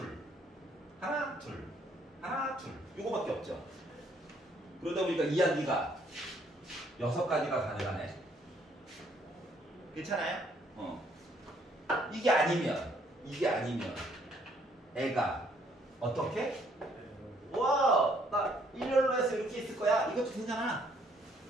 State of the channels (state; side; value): normal; both; correlation 0.66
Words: 하나, 둘, 하나, 둘. 요거밖에 없죠. 그러다 보니까 이야기가 6가지가 가능하네. 괜찮아요? 이게 아니면 애가 어떻게? 와, 나 일렬로 해서 이렇게 있을 거야. 이것도 괜찮아.